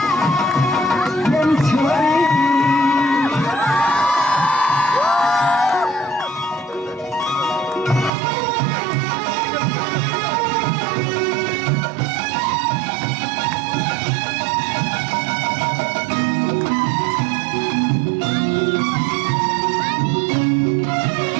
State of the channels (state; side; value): drops out; left; at 8.1 s